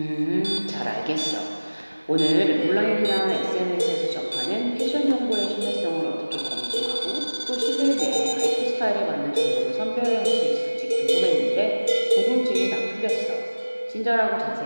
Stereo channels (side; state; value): both; inverted; correlation -1.00